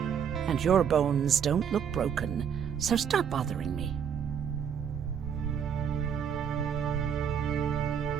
And your bones don't look broken, so stop bothering me.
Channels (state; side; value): quieter; left; 7.9 dB